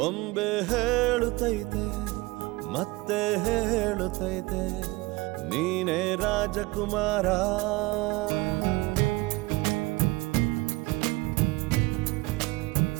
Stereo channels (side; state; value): left; quieter; 22.2 dB